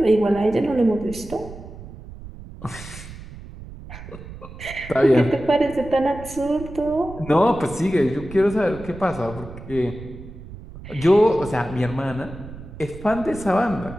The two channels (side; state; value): right; noise; rumble, 14 dB below the sound